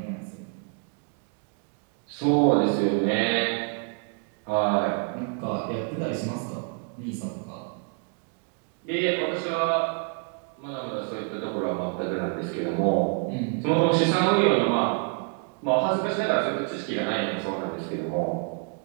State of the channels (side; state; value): left; quieter; 39.2 dB